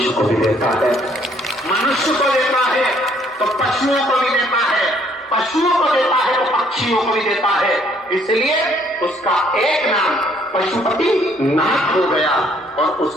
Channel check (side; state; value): both; normal; correlation 0.64